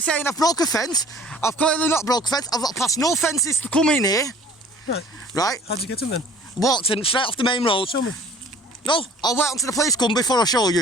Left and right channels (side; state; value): both; normal; correlation 0.49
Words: saying I've broke a fence. I've clearly not broke a fence. I've got past no fences to come in here, Right. right? How'd you get in then? Walked in straight off the main road. Show me. No, I'll wait until the police come before I show